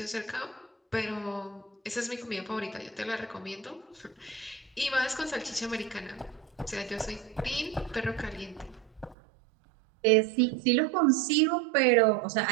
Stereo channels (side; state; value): left; drops out; at 9.2 s